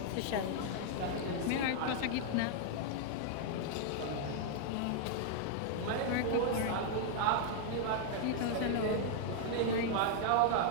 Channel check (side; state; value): both; different; correlation -0.01